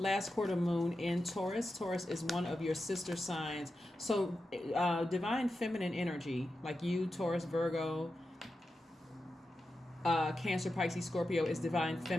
quarter moon in Taurus. Taurus is one of your sister signs. So divine feminine energy, like you, Taurus, Virgo, Cancer, Pisces, Scorpio, is divine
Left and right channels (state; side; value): normal; both; correlation 0.90